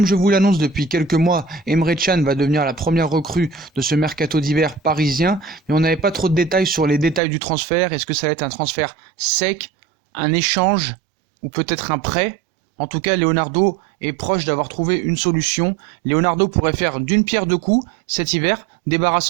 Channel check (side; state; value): left; drops out; at 7.2 s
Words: je vous l'annonce depuis quelques mois, Emre Can va devenir la première recrue de ce Mercato d'hiver parisien. Mais on n'avait pas trop de détails sur les détails du transfert. Est-ce que ça va être un transfert sec, un échange ou peut-être un prêt? En tout cas, Leonardo est proche d'avoir trouvé une solution. Leonardo pourrait faire d'une pierre deux coups cet hiver,